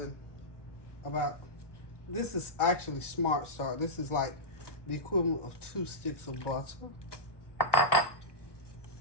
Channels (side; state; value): right; late; 1.1 ms